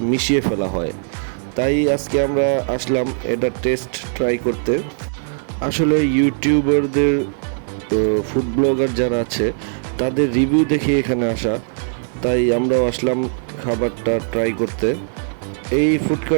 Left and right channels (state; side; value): silent; left; digital silence